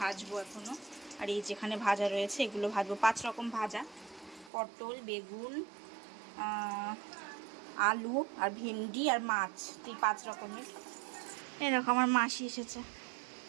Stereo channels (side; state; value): left; drops out; at 4.5 s